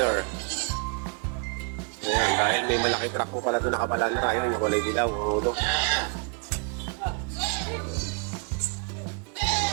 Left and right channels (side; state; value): left; quieter; 38.3 dB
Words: Ayan, dahil may malaki truck po pala doon nakapalandra. Ayun, yung kulay dilaw, ang ulo.